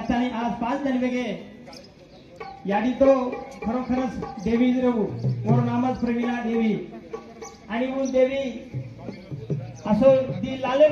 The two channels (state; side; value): identical; both; correlation 1.00